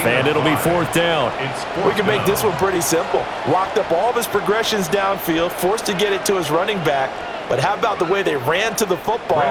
And it'll be 4th down. We can make this one pretty simple. Locked up all of his progressions downfield, forced to get it to his running back. But how about the way they ran to the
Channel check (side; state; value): both; identical; correlation 1.00